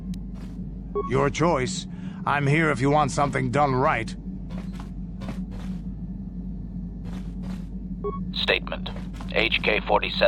Your choice. I'm here if you want something done right. Statement.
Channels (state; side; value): identical; both; correlation 1.00